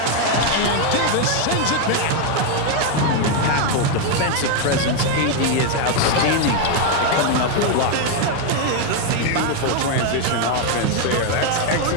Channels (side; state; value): both; different; correlation 0.01